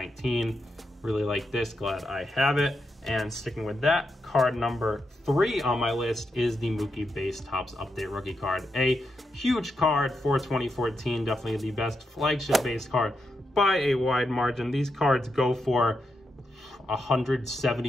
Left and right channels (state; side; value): normal; both; correlation 0.84